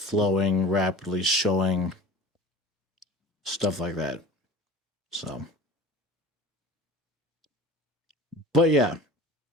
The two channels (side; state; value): both; normal; correlation 0.40